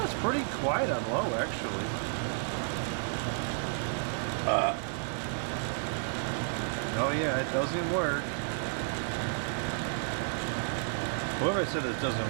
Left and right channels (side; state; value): left; silent; digital silence